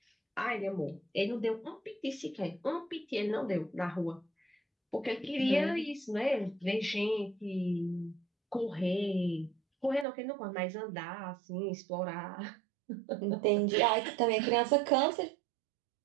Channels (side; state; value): left; drops out; at 10.1 s